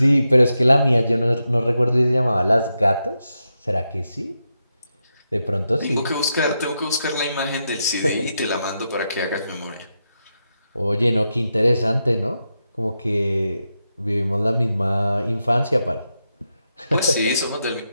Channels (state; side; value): inverted; both; correlation -0.86